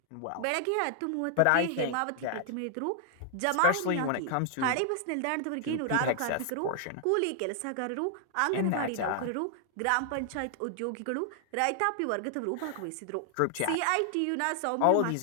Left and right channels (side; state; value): both; different; correlation 0.00